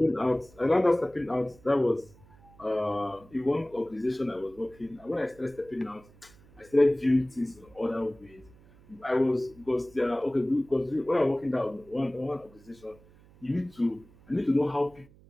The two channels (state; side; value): noise; right; hum, 25 dB below the sound